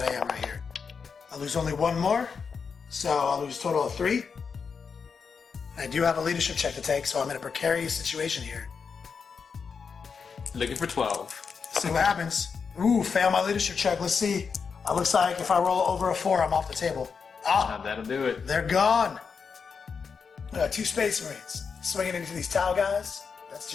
I am right here. I lose only 1 more, so I'll lose a total of 3. I do have a leadership check to take, so I'm in a precarious situation here. Looking for 12. See what happens. Ooh, fail my leadership check. Let's see. It looks like if I roll over a 4, I'm off the table. Ah, That'll do it. they're gone. 2 Space Marines. Swinging into these Tau guys. That's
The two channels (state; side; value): quieter; right; 5.8 dB